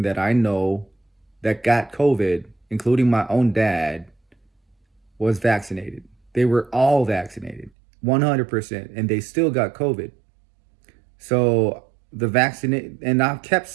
that I know that got COVID, including my own dad, was vaccinated. They were all vaccinated, 100%, and they still got COVID. So the vaccinate, and I kept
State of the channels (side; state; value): left; drops out; at 7.7 s